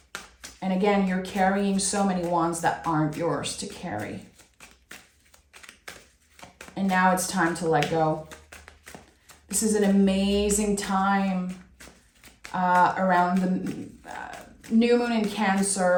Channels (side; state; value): both; identical; correlation 1.00